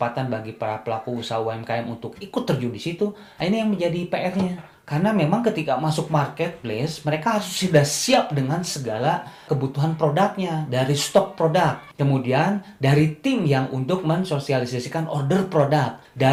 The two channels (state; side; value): identical; both; correlation 1.00